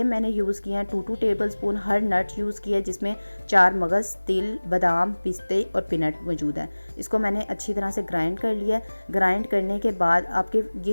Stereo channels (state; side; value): inverted; both; correlation -1.00